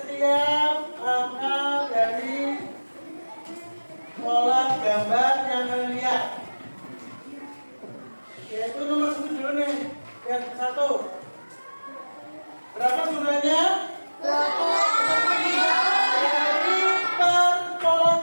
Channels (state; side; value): inverted; both; correlation -1.00